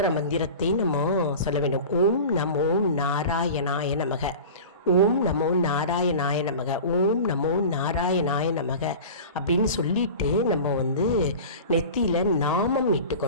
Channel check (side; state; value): both; inverted; correlation -0.35